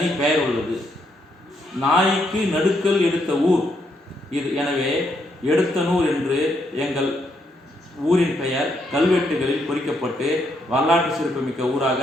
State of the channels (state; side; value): normal; both; correlation 0.76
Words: பெயர் உள்ளது. நாய்க்கு நடுக்கல் எடுத்த ஊர் இது. எனவே எடத்தனூர் என்று எங்கள் ஊரின் பெயர் கல்வெட்டுகளில் பொறிக்கப்பட்டு வரலாற்று சிறப்புமிக்க ஊராக